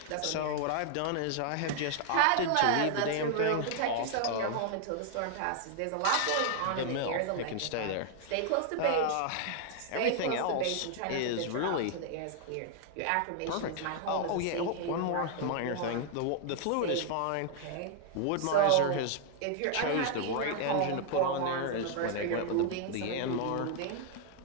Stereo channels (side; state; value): both; different; correlation 0.00